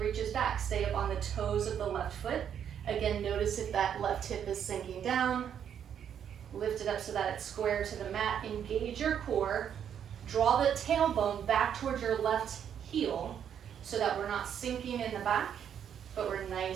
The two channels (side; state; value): left; quieter; 8.8 dB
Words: reaches back, stay up on the toes of the left foot. Again, notice if that left hip is sinking down, lift it up so that it's square to the mat, engage your core, draw the tailbone back towards your left heel so that we're not sinking in the back, but we're